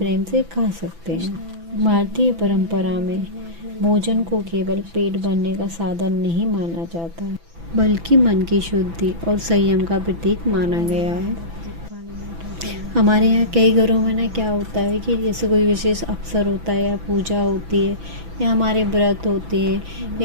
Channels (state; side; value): late; left; 6.0 ms